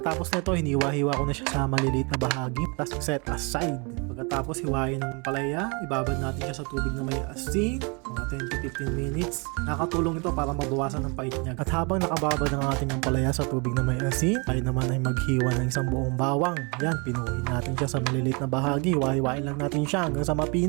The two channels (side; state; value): left; quieter; 31.6 dB